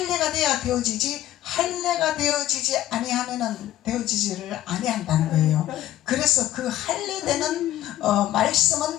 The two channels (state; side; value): quieter; right; 13.7 dB